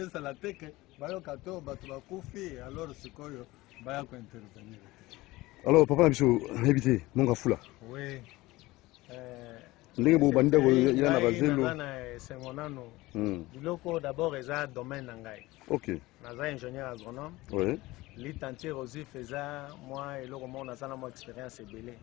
te ke bayoka to bato bakufi alors sikoyo baya kointervenir. Alors papa na biso nayebi te Monga Fula. Oui. Ndenge bo bandako ila na bazelo sengonano biloko d'abord eza domaine na ngai. OK. Naza ingénieur agronome. Oui. Litantier aussi faisait moi eloko mo nazana mo expérience ebele.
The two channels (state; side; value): quieter; right; 19.5 dB